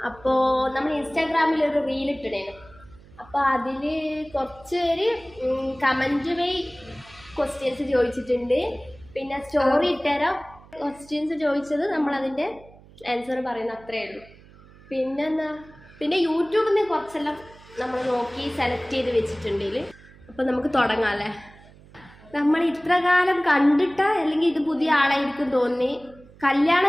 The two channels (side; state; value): right; noise; hum, 23 dB below the sound